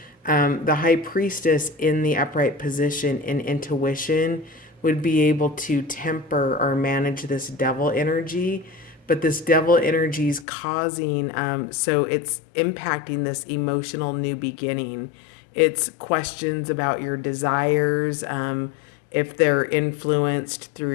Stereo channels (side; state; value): right; drops out; at 10.5 s